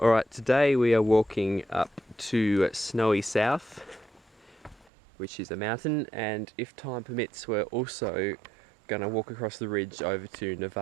today we are walking up to Snowy South, which is a mountain, and if time permits we're also going to walk across the ridge over to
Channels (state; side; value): drops out; left; at 4.9 s